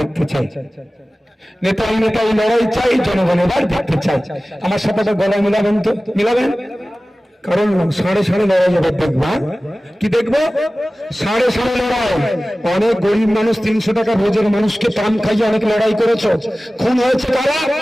চাই। নেতাই নেতাই লড়াই চাই, জনগণ এবার দেখতে চাই। আমার সাথে গলায় মিলাবেন তো? মিলাবেন? কারণ সাড়ে সাড়ে লড়াই এবার দেখবো। কি দেখবো? সাড়ে সাড়ে লড়াই। অনেক গরিব মানুষ 300 টাকা রোজের মানুষকে পান খাইয়ে অনেক লড়াই করেছো, খুন হয়েছে কারা?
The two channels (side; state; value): both; normal; correlation 0.97